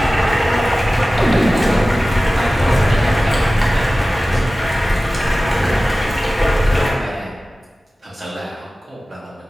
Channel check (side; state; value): both; normal; correlation 0.96